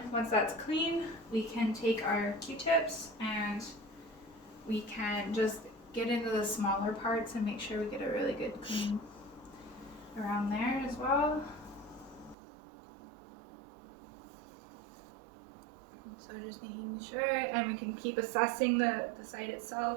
once that's clean, we can take our Q-tips and we can just get into the smaller parts and make sure we get a really good clean around there as well. So just making sure, and we can keep assessing the site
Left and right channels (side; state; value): left; drops out; at 12.4 s